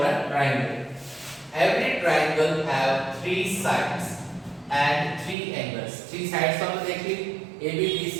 a triangle. Every triangle have three sides and three angles. Three sides हमने देख ली, AB,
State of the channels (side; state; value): left; drops out; at 5.4 s